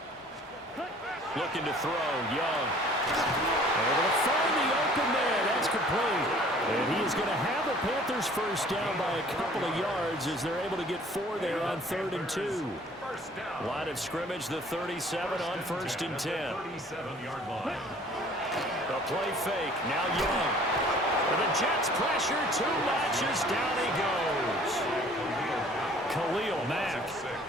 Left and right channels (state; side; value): normal; both; correlation 0.53